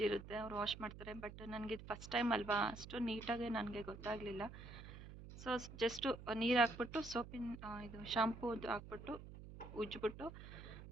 ಇರುತ್ತೆ, ಅವ್ರು ವಾಶ್ ಮಾಡ್ತಾರೆ. ಬಟ್ ನನಗೆ ಇದು ಫಸ್ಟ್ ಟೈಮ್ ಅಲ್ವಾ, ಅಷ್ಟು ನೀಟಾಗಿ ನನಗೆ ಗೊತ್ತಾಗಲಿಲ್ಲ. ಸೊ ಜಸ್ಟು ನೀರು ಹಾಕ್ಬಿಟ್ಟು ಸೋಪಿನ ಇದು ಶಾಂಪೂದು ಹಾಕ್ಬಿಟ್ಟು ಉಜ್ಜಿಬಿಟ್ಟು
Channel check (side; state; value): right; noise; hum, 13 dB below the sound